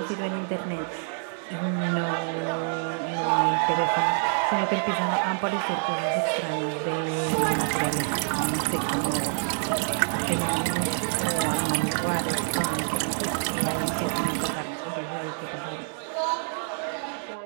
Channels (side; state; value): left; silent; 60 dB below the other